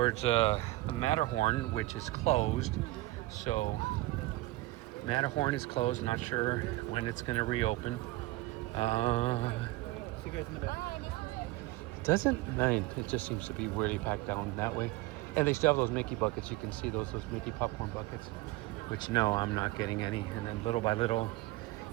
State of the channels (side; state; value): left; quieter; 19.0 dB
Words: the Matterhorn, which is closed. So Matterhorn is closed, not sure when it's gonna reopen. See you guys in the back. It doesn't, it just seems to be really packed down that way. And they still have those Mickey buckets. You can see those Mickey popcorn buckets, which no, I'm not getting any. And then little by little,